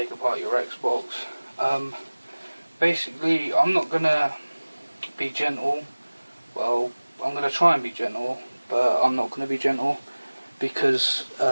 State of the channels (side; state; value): both; inverted; correlation -1.00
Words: apart your Xbox. Basically, I'm not going to be gentle. Well, I'm going to try and be gentle, but I'm not going to be gentle because